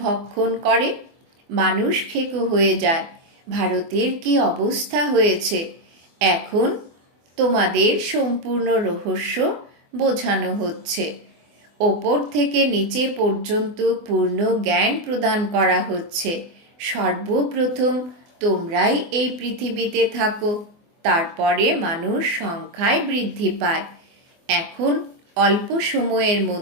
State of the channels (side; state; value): left; late; 24 ms